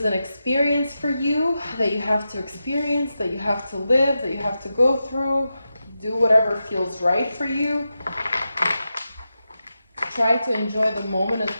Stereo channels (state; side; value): inverted; both; correlation -0.90